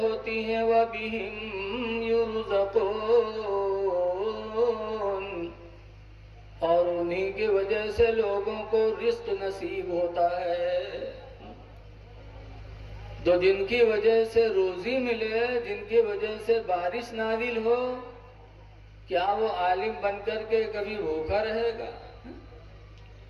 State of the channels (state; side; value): identical; both; correlation 1.00